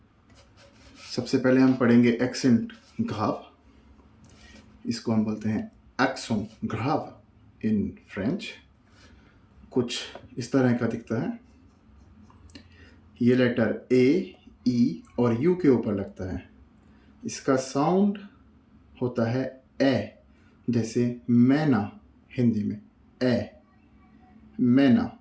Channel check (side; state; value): both; identical; correlation 1.00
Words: सबसे पहले हम पढ़ेंगे एक्सेंट ग्राव। इसको हम बोलते हैं एक्सों ग्राव इन फ्रेंच। कुछ इस तरह का दिखता है। ये लेटर ए, ई और यू के ऊपर लगता है। इसका साउंड होता है ए, जैसे मैना हिंदी में ए, मैना।